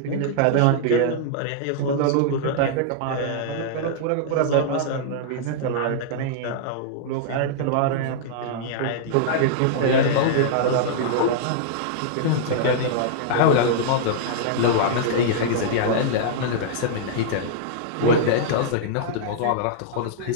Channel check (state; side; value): different; both; correlation -0.02